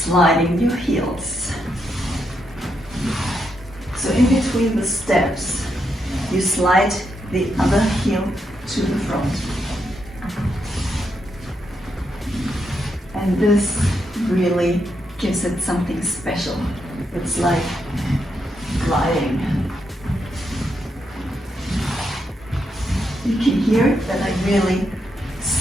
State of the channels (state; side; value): normal; both; correlation 0.81